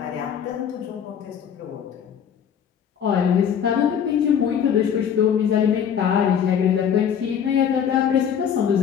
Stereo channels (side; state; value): right; quieter; 8.2 dB